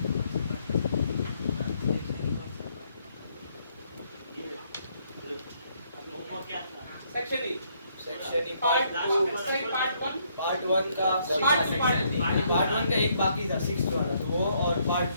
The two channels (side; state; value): both; inverted; correlation -0.70